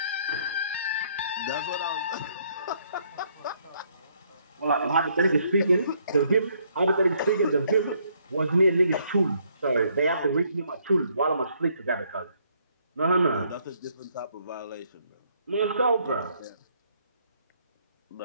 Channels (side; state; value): both; inverted; correlation -0.69